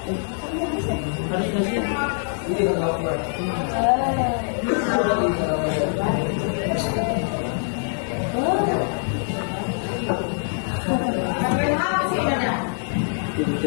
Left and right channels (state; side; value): silent; right; digital silence